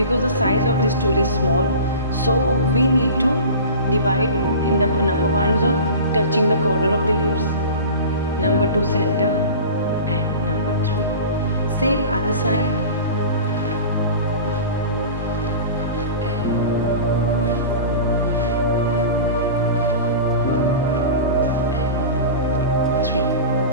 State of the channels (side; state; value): both; inverted; correlation -0.34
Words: the size of this tool is small. So we need to divide in the number 1 zone, touching the corner of the lips, number 2 center and number 3. Same other side.